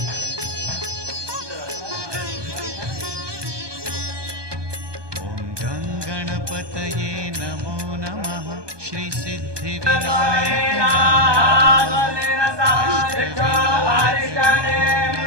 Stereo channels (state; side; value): late; left; 1.2 ms